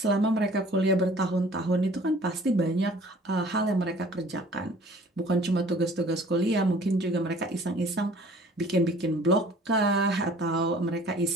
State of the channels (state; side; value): normal; both; correlation 0.51